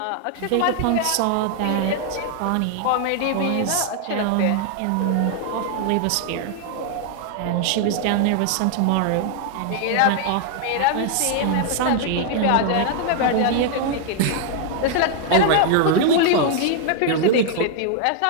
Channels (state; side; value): different; both; correlation 0.00